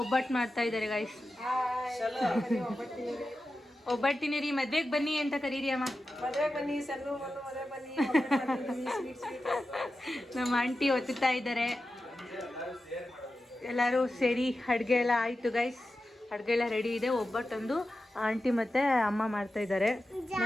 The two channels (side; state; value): both; normal; correlation 0.92